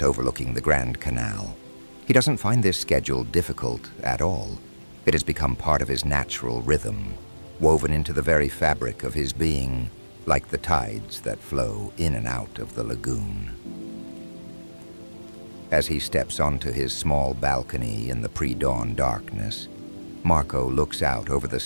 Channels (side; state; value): both; inverted; correlation -1.00